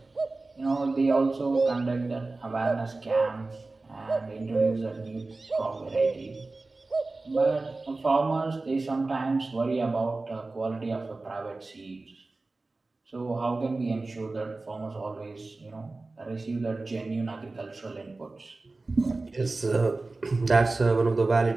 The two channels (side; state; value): left; quieter; 3.4 dB